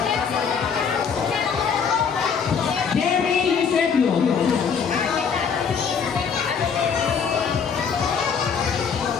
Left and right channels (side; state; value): right; quieter; 6.4 dB